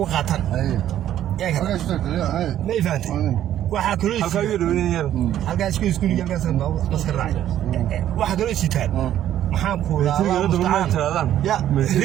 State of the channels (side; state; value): left; quieter; 11.6 dB